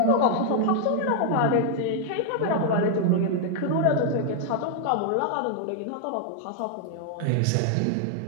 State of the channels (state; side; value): different; both; correlation 0.00